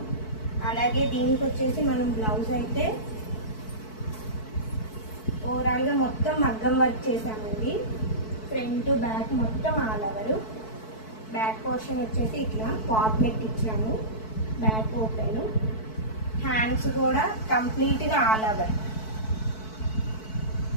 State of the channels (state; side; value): late; right; 4.6 ms